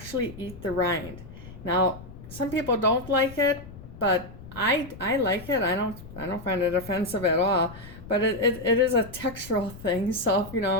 eat the rind. Now, some people don't like it, but I like it. I don't find it offensive at all. But it is a textural thing. So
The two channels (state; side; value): noise; left; rumble, 15 dB below the sound